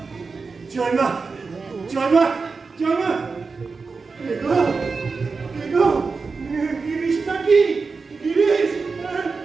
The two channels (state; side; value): quieter; left; 4.5 dB